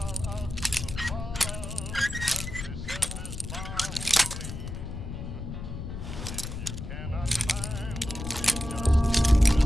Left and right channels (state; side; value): noise; left; rumble, 7 dB below the sound